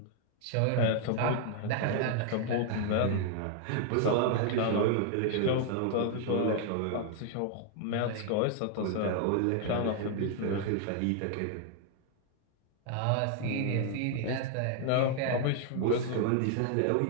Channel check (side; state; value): both; different; correlation 0.00